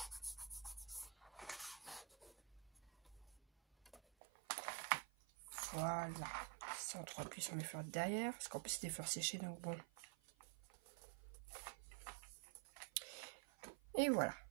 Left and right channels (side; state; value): left; drops out; at 4.0 s